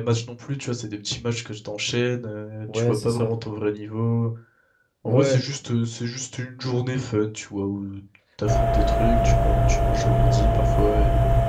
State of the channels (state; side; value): identical; both; correlation 1.00